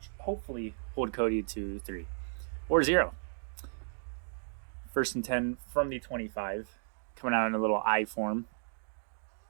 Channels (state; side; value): silent; left; digital silence